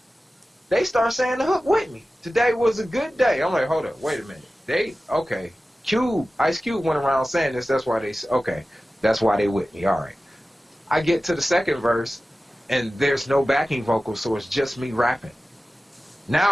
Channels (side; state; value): both; normal; correlation 0.95